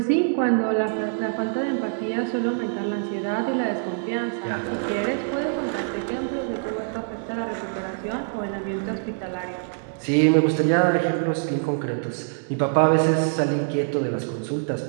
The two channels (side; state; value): left; silent; digital silence